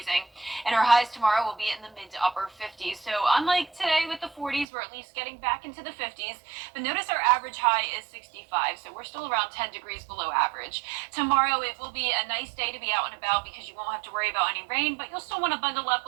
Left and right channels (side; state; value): left; drops out; at 4.7 s